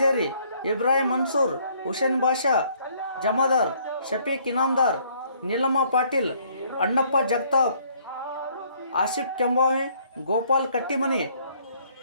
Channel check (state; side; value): inverted; both; correlation -0.63